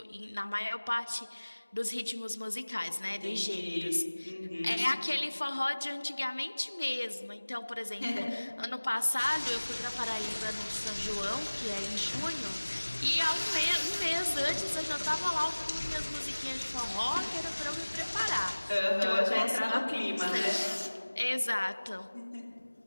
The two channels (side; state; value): both; inverted; correlation -1.00